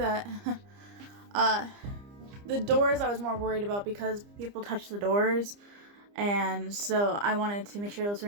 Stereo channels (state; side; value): late; left; 30 ms